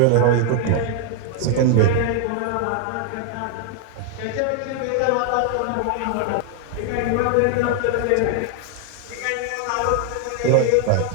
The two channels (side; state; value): both; different; correlation 0.00